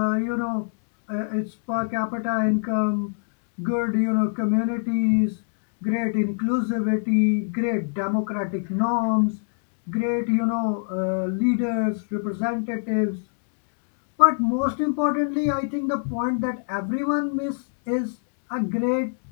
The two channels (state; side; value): silent; right; digital silence